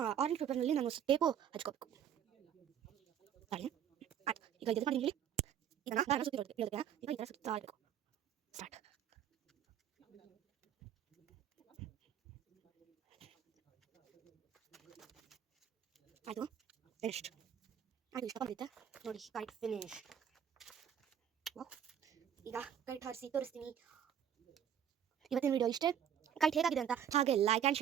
ಆರೆಂಜ್ ಪೇಪರ್ನಲ್ಲಿ ನಾನು ಟೇಪು ಹಚ್ಕೋಬೇಕು. ತಾಳಿ ಆಯ್ತು. ಈಗ ಇದು ಮಾಡಿ ಹೇಳಿ. ಈಗ ನಾನು ಸುತ್ತಿ ಹೇಳೋದಕ್ಕೆ ಈಗ ಈ ಥರ ಸುತ್ತಾ ಇರಬೇಕು. ಸ್ಟಾರ್ಟ್. ಆಯಿತು, ಫಿನಿಶ್ಡ್. ಆಯಿತು, ಇಷ್ಟ ಬಂದಿತ್ತೆ ನೋಡಿ, ಕೈಟ್ ಫಿನಿಶ್. ವಾವ್. ಈಗ ಕೈಟ್ ಹಾರಿಸಿ ತೋರಿಸ್ತೀನಿ. ಇವತ್ತಿನ ವಿಡಿಯೋ ಇಷ್ಟೇ. ಕೈಟ್ ಹೇಗಾಗಿದೆ ಅಂತ ಹಾಗೆ like and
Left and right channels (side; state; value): left; quieter; 9.1 dB